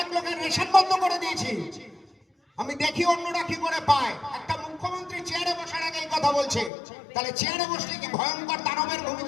লোকের রেশন বন্ধ করে দিয়েছি, আমি দেখি অন্যরা কি করে পায়। একটা মুখ্যমন্ত্রী চেয়ারে বসার আগে এই কথা বলছে, তাহলে চেয়ারে বসলে কি ভয়ঙ্কর দানবের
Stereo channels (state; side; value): drops out; right; at 6.7 s